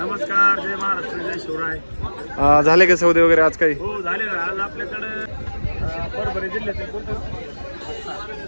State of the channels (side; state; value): both; inverted; correlation -1.00